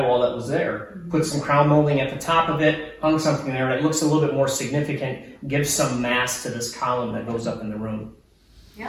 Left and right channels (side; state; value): both; identical; correlation 1.00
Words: that was there. Put some crown molding at the top of it, hung something there, and it looks a little bit more significant, gives some mass to this column that goes up in the room.